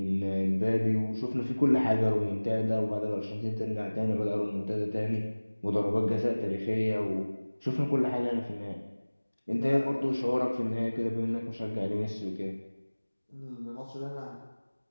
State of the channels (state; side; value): inverted; both; correlation -1.00